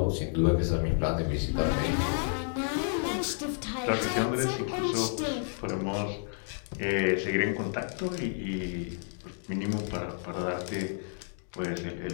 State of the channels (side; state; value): right; silent; digital silence